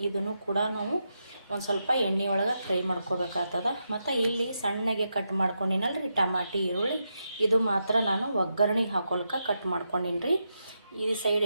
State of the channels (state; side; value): inverted; both; correlation -0.85